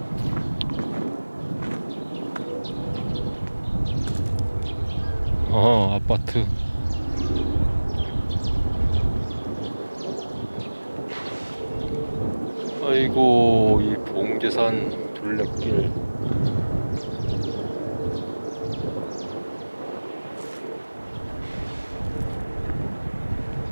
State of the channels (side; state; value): both; inverted; correlation -1.00